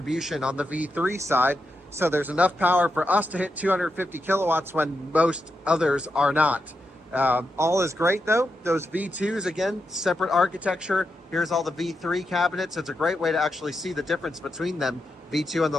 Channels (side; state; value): both; normal; correlation 0.86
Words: on the V3 side. So there's enough power for us to hit 250 kilowatts when most others are not. All is great though. Those V2s, again, separate architecture. Here's all the V3 cabinets. It's a great way to actually see the difference between them. V2 on